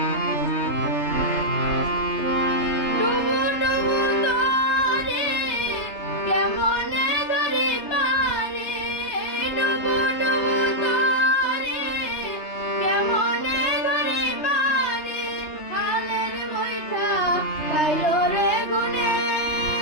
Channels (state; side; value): late; right; 3.3 ms